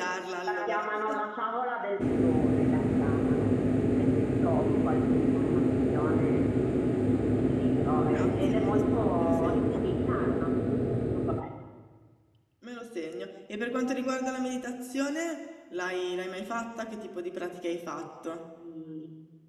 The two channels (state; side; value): identical; both; correlation 1.00